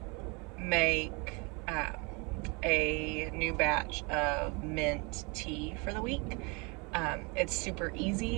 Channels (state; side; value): quieter; left; 30.2 dB